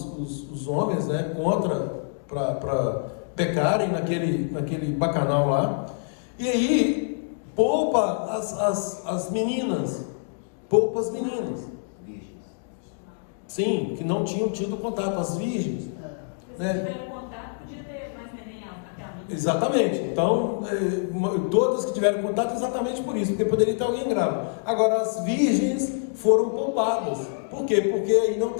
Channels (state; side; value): silent; right; digital silence